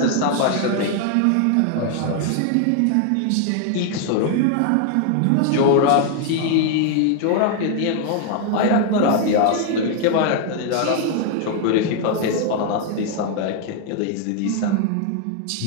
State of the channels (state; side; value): different; both; correlation 0.00